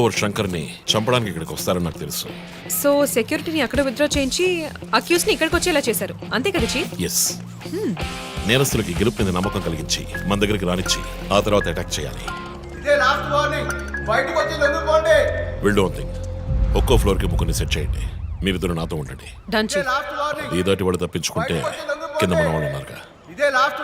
శంకర్ని చంపడానికి ఇక్కడికి వస్తారని నాకు తెలుసు. సో సెక్యూరిటీని అక్కడ విత్డ్రా చేయించి అక్యూస్ ని ఇక్కడికి వచ్చేలా చేశారు, అంతే కదా చీఫ్? ఎస్. నేరస్తులకి గెలుపు మీద నమ్మకం కలిగించి మన దగ్గరికి రానిచ్చి ఆ తర్వాత అటాక్ చేయాలి. ఇదే లాస్ట్ వార్నింగ్. బయటకు వచ్చి లొంగిపోండి. Will do one thing. ఒక్కో ఫ్లోర్ కి ముగ్గురిని సెట్ చేయండి. మీరిద్దరు నాతో ఉండండి. Done chief. Last warning. ఈ దాటి వాడు తప్పించుకుంటే కింద మన వాళ్ళు ఉన్నారుగా. ఇదే లాస్ట్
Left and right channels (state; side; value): identical; both; correlation 1.00